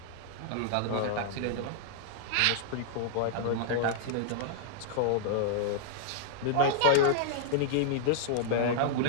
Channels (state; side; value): different; both; correlation -0.01